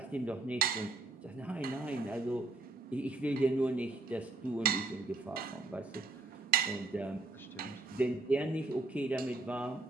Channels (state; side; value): quieter; left; 3.2 dB